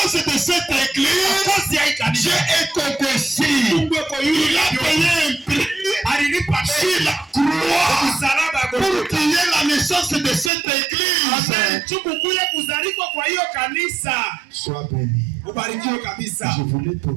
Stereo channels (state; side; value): drops out; left; at 10.5 s